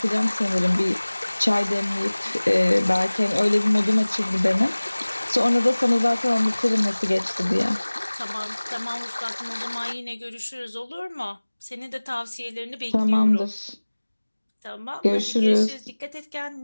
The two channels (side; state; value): both; inverted; correlation -1.00